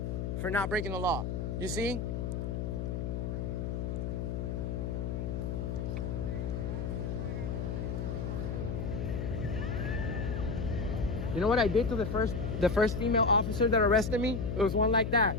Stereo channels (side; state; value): left; noise; hum, 2 dB below the sound